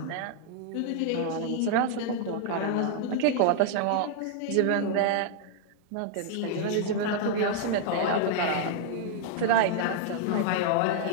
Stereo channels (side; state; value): both; different; correlation 0.00